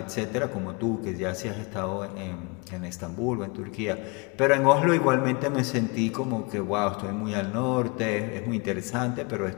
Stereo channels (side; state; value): right; quieter; 29.6 dB